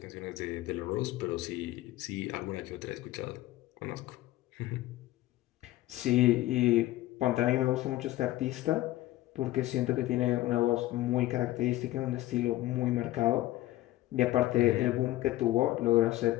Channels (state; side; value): quieter; right; 16.3 dB